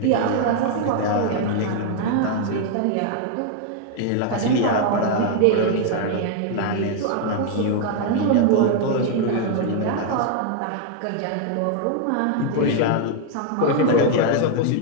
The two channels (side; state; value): both; different; correlation 0.00